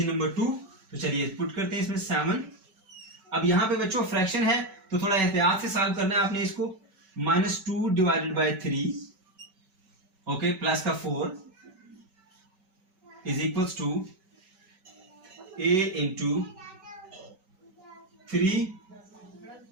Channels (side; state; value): left; late; 5.2 ms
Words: नंबर 2। तो चलिए पुट करते हैं इसमें 7। अब यहाँ पे बच्चों फ्रैक्शन है तो थोड़ा एहतियात से सॉल्व करना है आपने इसको। -2 डिवाइडेड बाय 3 ओके प्लस का 4 is equals to a into 3